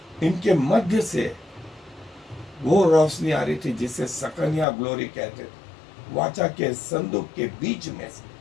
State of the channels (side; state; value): right; drops out; at 4.7 s